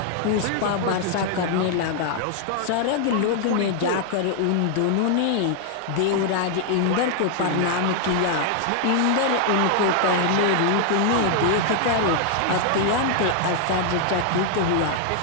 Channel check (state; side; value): different; both; correlation 0.00